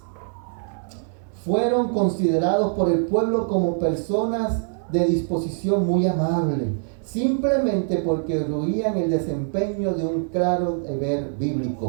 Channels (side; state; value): left; silent; 60 dB below the other